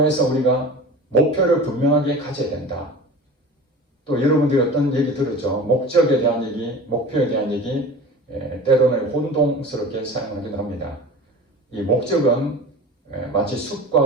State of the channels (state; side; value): normal; both; correlation 0.36